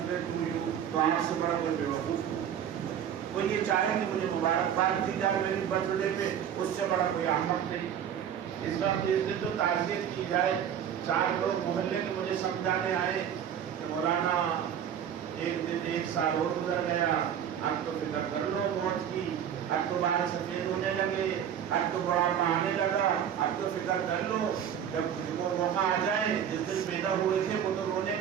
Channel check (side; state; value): left; quieter; 9.1 dB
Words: ڈے ٹو یو، تو آپ سے بڑا کوئی بے وقوف نہیں۔ کوئی یہ چاہے کہ مجھے مبارکباد دی جائے میرے برتھ ڈے پہ، اس سے بڑا کوئی احمق نہیں۔ اس وقت اس دن تو تعزیت کی جائے۔ 4 لوگ محلے کے مجھے سمجھانے آئے کہ مولانا ایک دن 1 سال اور گزر گیا، اب تو فکر کر لو موت کی، اب تو بال سفید ہونے لگے، اب تو بڑھاپا آنے لگا، اب تو فکر کر لو جب وہ موقع آ جائے۔ جس دن پیدا ہوئے تھے وہ تو رونے